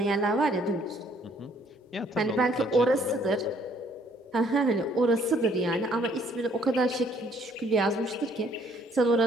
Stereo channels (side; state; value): both; normal; correlation 0.63